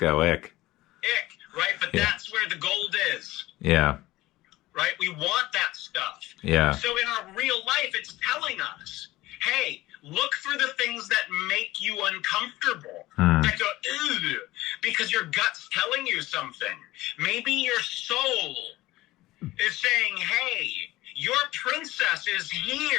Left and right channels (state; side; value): quieter; right; 17.8 dB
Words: ick. Ick, right? But that's where the gold is. Yeah. Right? We want that stuff. Yeah. So in our real life, it's telling us, hey, look for the things that make you uncomfortable. That go, ew, because your gut's telling you something. Maybe your soul is saying, hey, your princess is